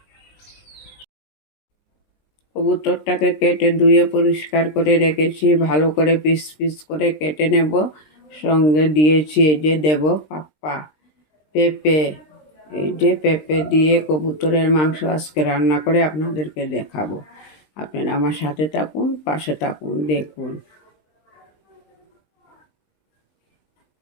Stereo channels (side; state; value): right; late; 20 ms